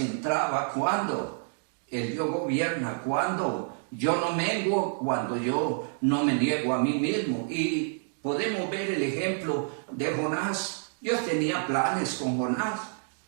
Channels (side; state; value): left; silent; digital silence